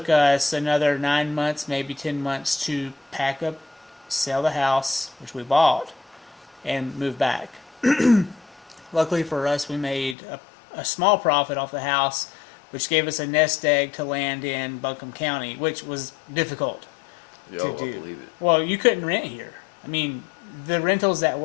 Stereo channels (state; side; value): drops out; right; at 10.2 s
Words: us another 9 months, maybe 10 months to pack up, sell the house, which we bought, and move back. Luckily for us, we made a small profit off the house, which gave us a nest egg to land in Buncombe County, which was difficult to do. I believe it. Well, you couldn't rent here. I mean, the rentals that